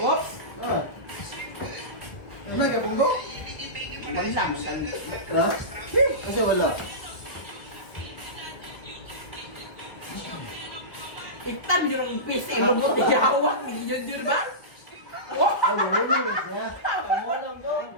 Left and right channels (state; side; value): late; right; 1.3 ms